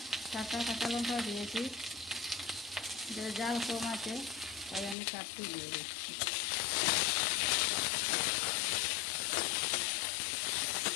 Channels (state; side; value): drops out; right; at 5.0 s